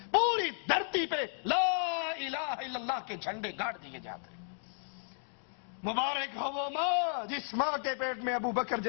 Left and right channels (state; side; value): silent; right; digital silence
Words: پوری دھرتی پہ لا الہ الا اللہ کے جھنڈے گاڑ دیے جاتے۔ مبارک ہو وہ ماں جس ماں کے پیٹ میں ابو بکر